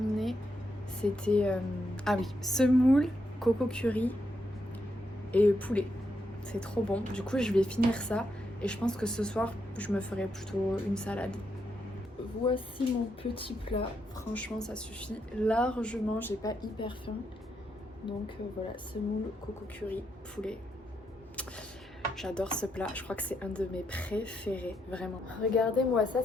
C'était, ah oui, semoule, coco curry et poulet. C'est trop bon. Du coup, je vais finir ça et je pense que ce soir, je me ferai plutôt une salade. Voici mon petit plat. Franchement, ça suffit largement. J'ai pas hyper faim. Donc voilà, semoule, coco curry, poulet. J'adore ce plat. Je crois que c'est un de mes préférés, vraiment. Regardez-moi ça,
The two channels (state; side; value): normal; both; correlation 0.80